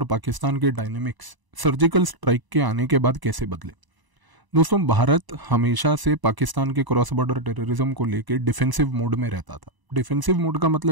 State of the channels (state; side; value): late; left; 1.0 ms